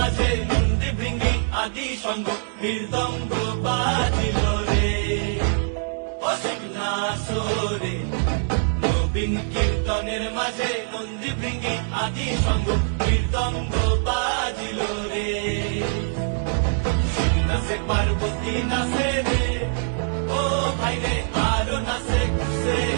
নন্দী ভৃঙ্গি আদি সঙ্গ মৃদঙ্গ বাজিল রে অসীম নাসরে। নবীন কীর্তনের মাঝে নন্দী ভৃঙ্গি আদি সঙ্গ মৃদঙ্গ বাজিল রে। নাচে পার্বতী নাচে রে ও ভাই রে আরো নাচে খুশে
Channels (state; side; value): silent; left; digital silence